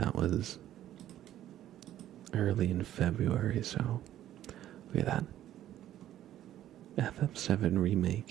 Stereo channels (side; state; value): left; quieter; 12.4 dB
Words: was early in February, so look at that. FF7